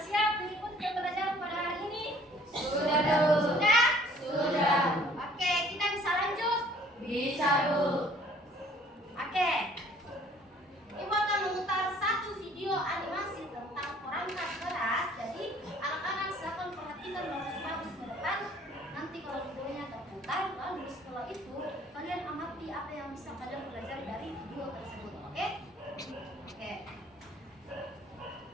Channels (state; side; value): normal; both; correlation 0.56